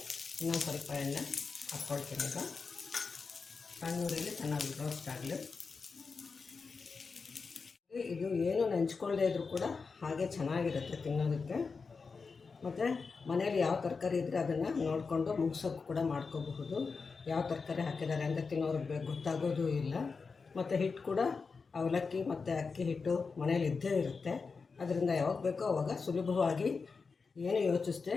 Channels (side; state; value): right; quieter; 4.8 dB